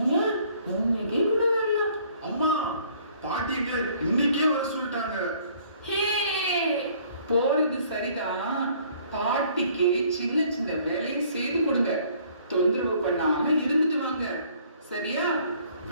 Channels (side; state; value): both; inverted; correlation -0.59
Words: ஏன் இன்னைக்கே கூட வரலாம். அம்மா, பாட்டி எங்களை இன்னைக்கே வர சொல்லிட்டாங்க. ஹே, போறது சரிதான். பாட்டிக்கு சின்ன சின்ன வேலையை செய்து கொடுங்க, தொந்தரவு பண்ணாம இருந்துட்டு வாங்க, சரியா?